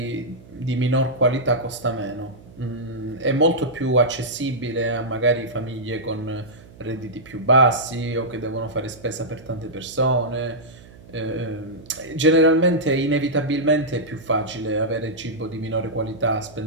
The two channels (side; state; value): right; noise; hum, 21 dB below the sound